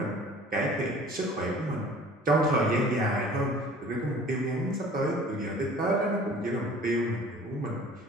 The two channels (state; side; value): normal; both; correlation 0.47